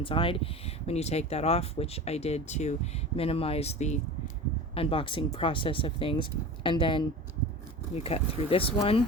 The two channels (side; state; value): both; normal; correlation 0.34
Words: When you take that off, which I did to minimize the unboxing process of things, and then we cut through this one